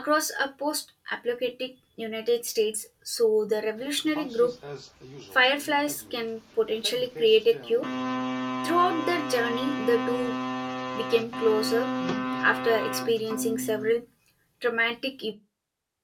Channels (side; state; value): both; identical; correlation 1.00